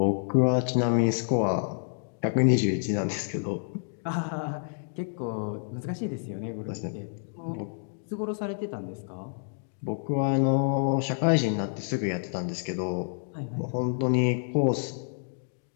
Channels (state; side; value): silent; right; digital silence